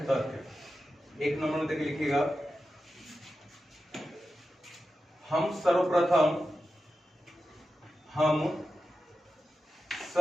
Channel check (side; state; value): both; normal; correlation 0.92